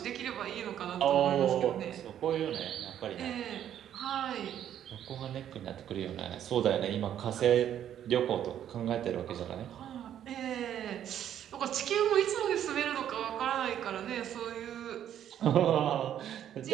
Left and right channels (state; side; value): quieter; left; 10.4 dB